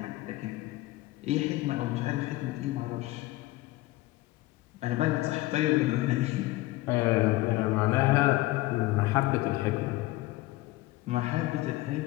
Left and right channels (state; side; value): quieter; right; 18.6 dB